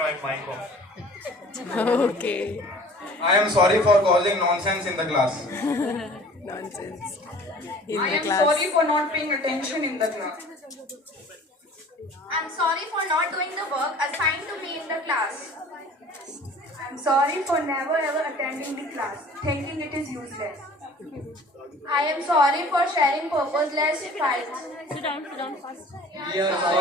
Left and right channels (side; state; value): both; normal; correlation 0.47